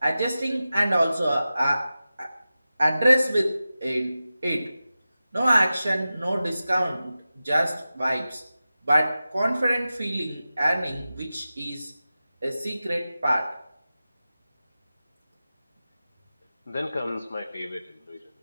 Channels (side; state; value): both; inverted; correlation -0.94